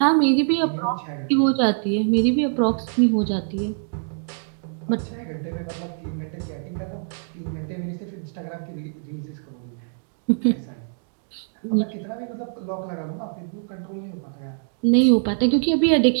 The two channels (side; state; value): left; silent; digital silence